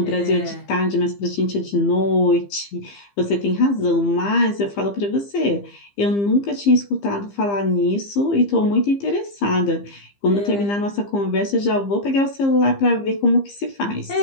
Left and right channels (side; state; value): right; late; 15 ms